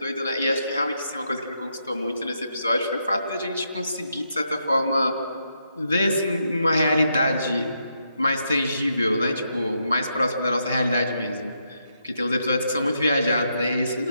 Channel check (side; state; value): both; inverted; correlation -0.80